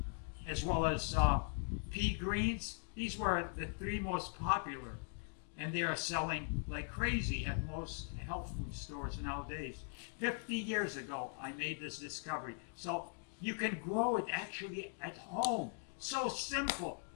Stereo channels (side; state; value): right; silent; 51 dB below the other